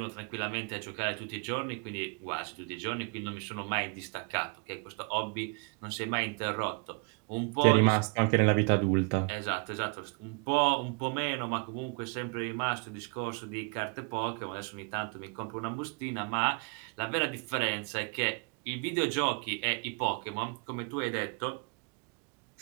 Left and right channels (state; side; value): quieter; left; 35.1 dB